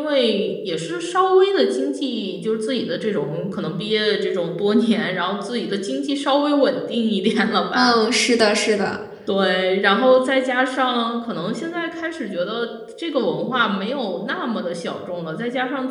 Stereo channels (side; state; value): both; identical; correlation 1.00